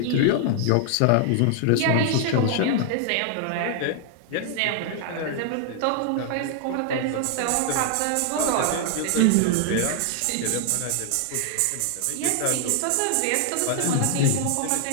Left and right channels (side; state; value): both; different; correlation 0.00